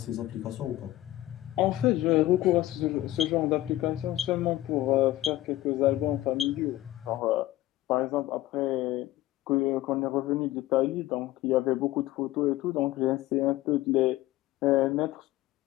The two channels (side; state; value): right; quieter; 16.1 dB